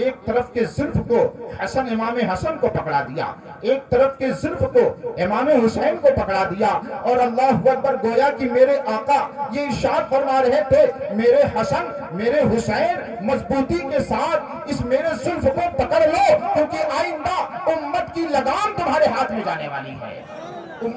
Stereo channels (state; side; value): identical; both; correlation 1.00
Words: طرف کے زلف کو حسن امام حسن کو پکڑا دیا, ایک طرف کے زلف کو امام حسین کو پکڑا دیا, اور اللہ اکبر گویا کہ میرے آقا یہ ارشاد فرما رہے تھے میرے حسن میرے حسین مضبوطی کے ساتھ اس میرے زلف کو پکڑ لو, کیونکہ آئندہ امت کی لگام تمہارے ہاتھ میں جانے والی ہے,